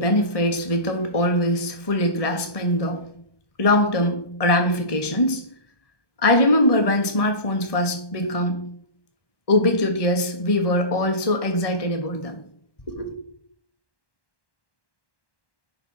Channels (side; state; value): right; late; 1.1 ms